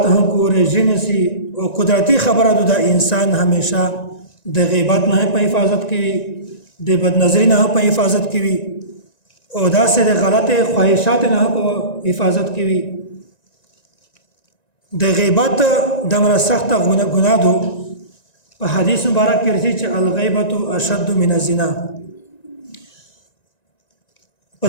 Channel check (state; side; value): late; right; 1.9 ms